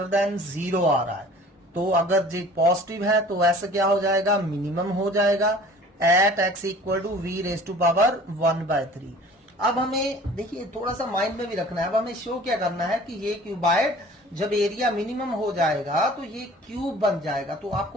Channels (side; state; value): both; normal; correlation 0.47